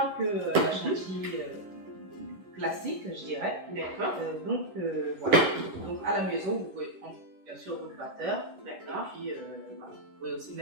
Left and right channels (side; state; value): left; late; 11 ms